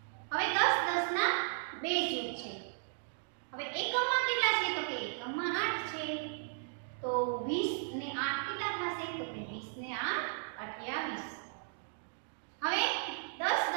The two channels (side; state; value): left; silent; digital silence